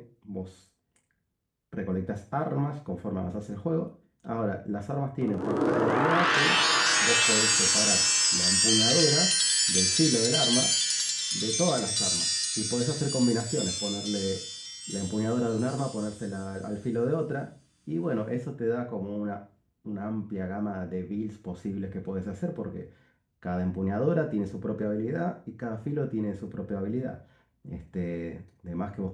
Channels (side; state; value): both; identical; correlation 1.00